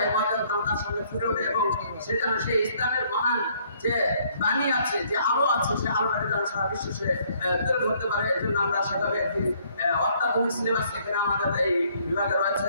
এই মর্যাদা তার সামনে ফুটে ওঠে এবং সে যেন সেই ইসলামের মহান যে বাণী আছে, যে আলো আছে, সেই আলোটাকে যেন সারা বিশ্বে সে তুলে ধরতে পারে। এই জন্য আমরা সেভাবে একটি অত্যাধুনিক সিলেবাস এখানে আমাদের এই বিভাগে রয়েছে।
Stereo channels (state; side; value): inverted; both; correlation -0.64